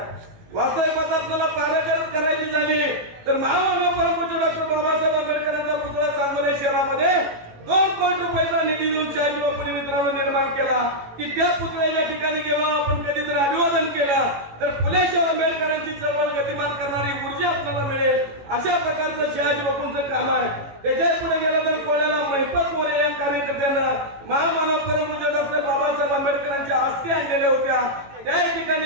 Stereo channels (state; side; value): late; left; 18 ms